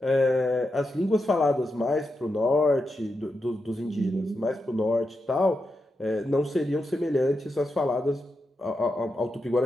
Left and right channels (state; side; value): normal; both; correlation 0.87